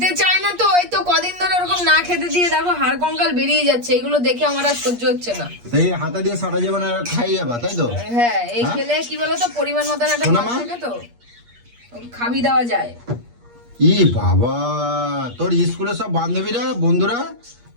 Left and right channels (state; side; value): late; left; 8.4 ms